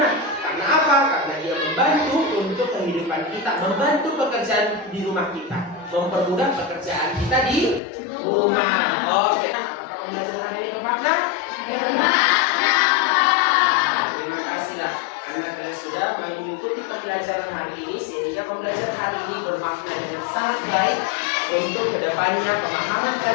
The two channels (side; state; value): right; drops out; at 7.8 s